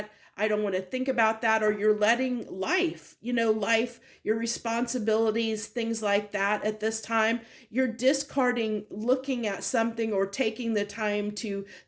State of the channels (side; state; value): both; identical; correlation 1.00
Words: I don't want to think about that. Or you're letting life, your responsibilities, things like that at this time, you're discarding looking at something or taking the time to